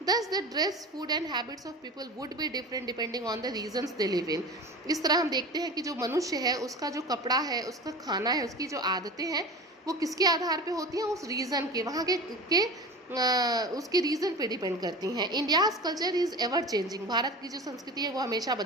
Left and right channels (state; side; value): normal; both; correlation 0.33